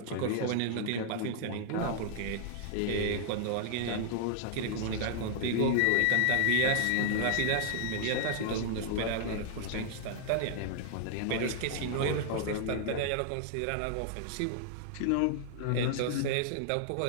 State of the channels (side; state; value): both; different; correlation -0.01